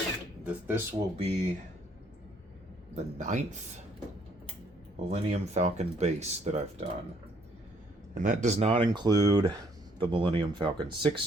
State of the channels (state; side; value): normal; both; correlation 0.66